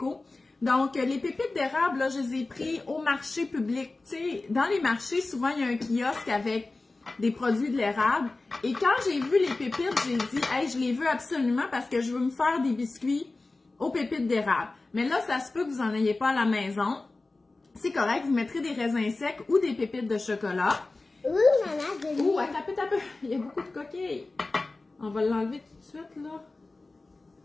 Donc, les pépites d'érable, là, je les ai pris au marché public. Tu sais, dans les marchés, souvent, il y a un kiosque avec des produits de l'érable. Et quand j'ai vu les pépites, j'ai dit, hey, je les veux absolument parce que je veux me faire des biscuits aux pépites d'érable. Mais là, ça se peut que vous n'en ayez pas à la maison. C'est correct, vous mettrez des raisins secs ou des pépites de chocolat. Oui, maman, Ouh, attends un peu. Il y a beaucoup de coquilles. On va l'enlever tout de suite, là.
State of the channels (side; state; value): right; quieter; 3.3 dB